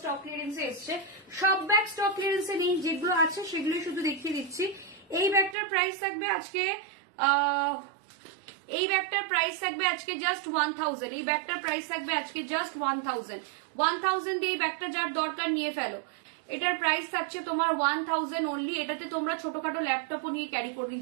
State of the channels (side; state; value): left; drops out; at 5.6 s